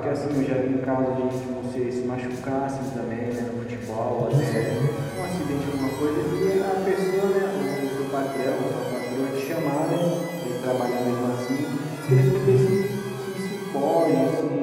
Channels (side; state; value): both; identical; correlation 1.00